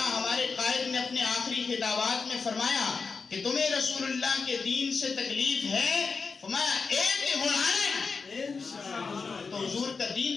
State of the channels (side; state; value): right; quieter; 4.9 dB